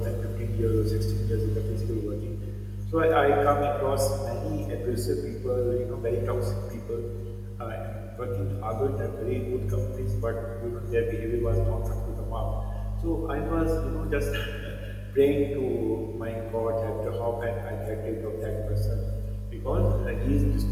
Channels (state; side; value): identical; both; correlation 1.00